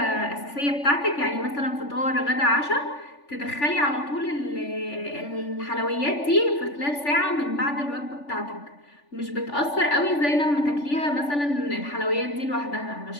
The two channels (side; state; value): right; late; 3.5 ms